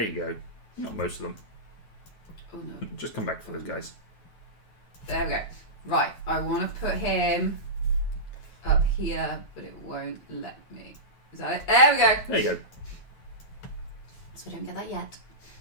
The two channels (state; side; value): late; right; 9.2 ms